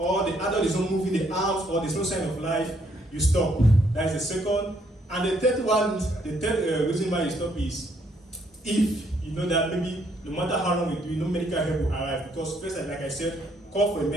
the adult is not moving the arms or there's no sign of life, you stop. That is the second. And the third one, the third reason why you stop is if you know that maybe no matter how long we do, no medical help will arrive. Because first, like I said, call for a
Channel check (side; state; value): both; normal; correlation 0.70